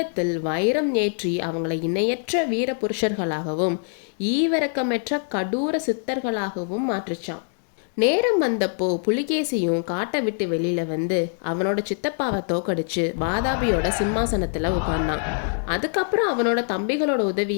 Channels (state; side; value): silent; right; digital silence